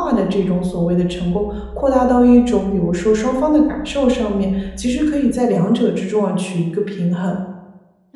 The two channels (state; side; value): identical; both; correlation 1.00